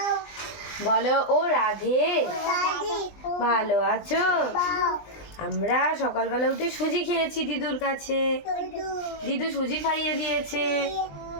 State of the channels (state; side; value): late; right; 20 ms